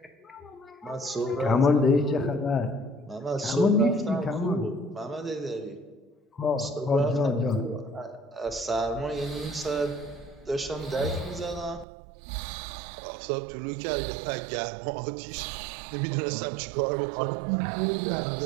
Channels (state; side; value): drops out; left; at 11.9 s